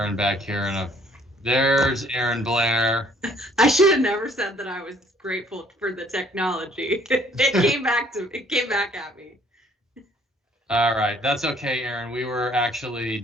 back here there's Erin Blair. I should have never said that I was grateful for the technology. It came back at me. All right, that's okay, Erin. We were actually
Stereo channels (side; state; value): both; normal; correlation 0.60